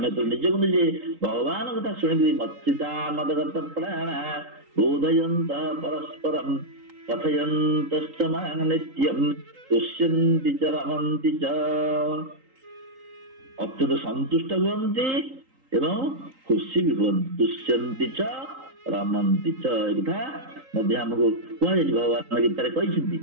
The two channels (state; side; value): late; left; 3.8 ms